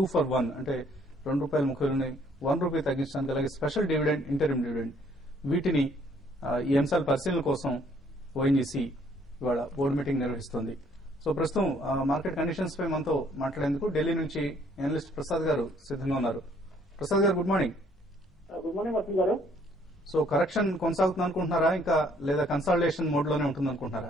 for 1 అంటే ₹2.30 ₹1 తగ్గించడానికి, అలాగే స్పెషల్ డివిడెండ్, ఇంటరిమ్ డివిడెండ్, వీటిని ఈ అంశాల పరిశీలన కోసం ఓఎన్జీసీ ఇవాళ బోర్డు మీటింగ్ నిర్వహిస్తోంది. సో ప్రస్తుతం మార్కెట్ కండిషన్స్ పై మనతో మాట్లాడేందుకు ఢిల్లీ నుంచి అనలిస్ట్ ప్రసాద్ గారు సిద్ధంగా ఉన్నారు. Prasad garu, good morning. Good morning Vasanth garu. So correction కొనసాగుతుంది అనుకుంటున్నారా, ఇంకా లేదా కన్సాలిడేషన్ మోడ్ లోనే ఉంటుంది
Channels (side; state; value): both; normal; correlation 0.63